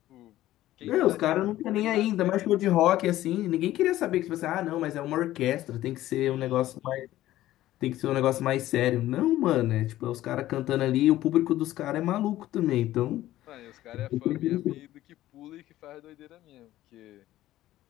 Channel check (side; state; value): right; quieter; 14.7 dB